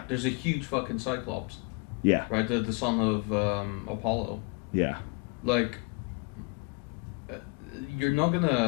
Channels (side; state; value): right; quieter; 32.5 dB